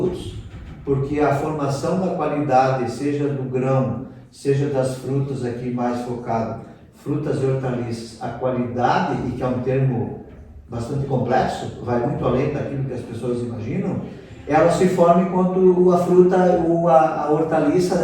porque a formação da qualidade, seja do grão, seja das frutas aqui mais focado, frutas e hortaliças, a qualidade, e que é um termo bastante complexo, vai muito além daquilo que as pessoas imaginam, ela se forma enquanto a fruta ou a hortaliça,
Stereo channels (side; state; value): both; identical; correlation 1.00